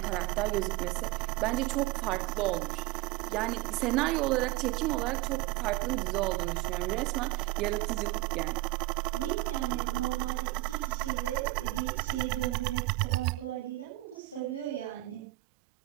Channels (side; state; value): left; quieter; 19.4 dB